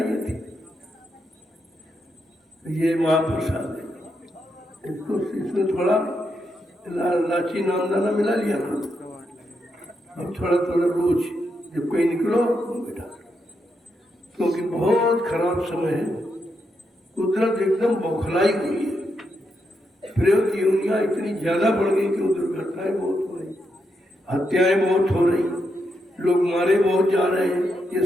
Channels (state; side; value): normal; both; correlation 0.82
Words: थी। ये महाप्रसाद है, इसको इसमें थोड़ा लाची नामदाना मिला लिया करो। अब थोड़ा थोड़ा रोज जब कहीं निकलो बेटा, क्योंकि बहुत खराब समय है, कुदरत एकदम बौखलाई हुई है। प्रयोग योनियां इतनी ज्यादा बढ़ गई कि वो दुर्घटनाएं बहुत हो रही, हत्याएं बहुत हो रही, लोग मारे बहुत जा रहे हैं। ये